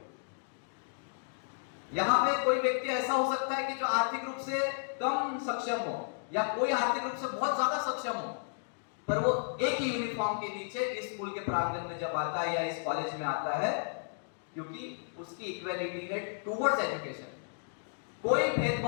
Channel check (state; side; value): silent; right; digital silence